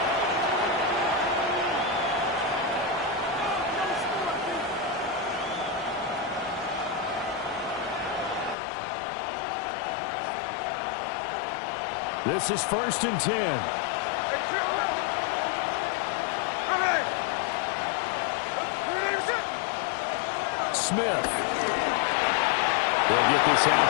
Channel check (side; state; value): right; drops out; at 8.6 s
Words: This is 1st and 10. Smith They'll get this out